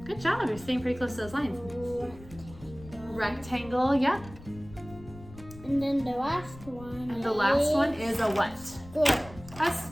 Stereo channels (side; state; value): left; noise; rumble, 18 dB below the sound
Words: Good job. You're staying pretty close to those lines. Rectangle. Yep. And then the last one. And the last one is a what? Square. A